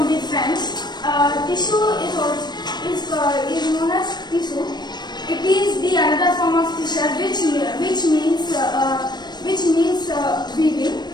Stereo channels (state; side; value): late; right; 0.21 ms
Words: the French. Tissue is known as tissue. It is the another form of tissue which means weaving.